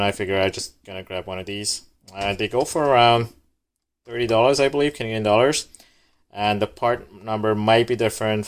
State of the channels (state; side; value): identical; both; correlation 1.00